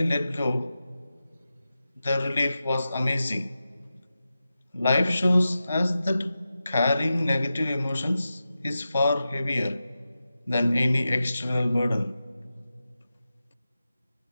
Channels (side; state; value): both; inverted; correlation -0.92